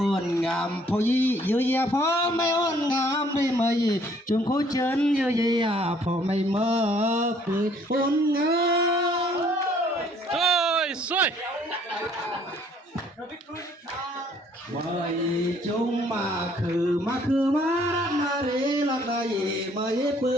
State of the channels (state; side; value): normal; both; correlation 0.61